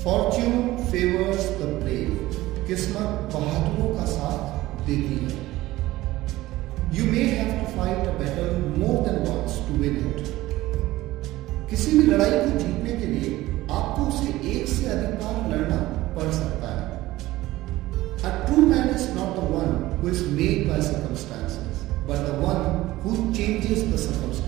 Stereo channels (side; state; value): left; quieter; 17.2 dB